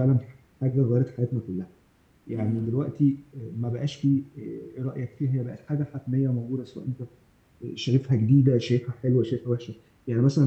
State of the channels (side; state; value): both; identical; correlation 1.00